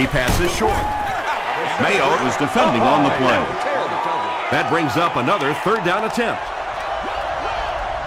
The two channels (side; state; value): both; identical; correlation 1.00